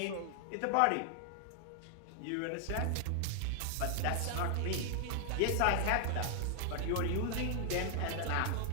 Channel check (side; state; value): both; different; correlation 0.00